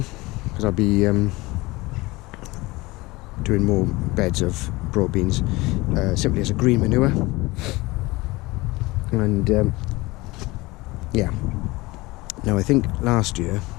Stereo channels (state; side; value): quieter; right; 21.6 dB